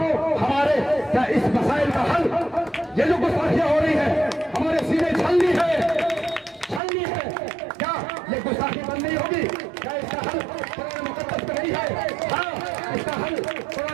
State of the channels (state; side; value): drops out; left; at 6.8 s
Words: हमारे क्या इस मसाइल का हल, ये जो गुस्ताखियां हो रही है हमारे सीने छलनी है, क्या ये गुस्ताखी बंद नहीं होगी? क्या इसका हल कुरान मुकद्दस में नहीं है? हाँ, इसका हल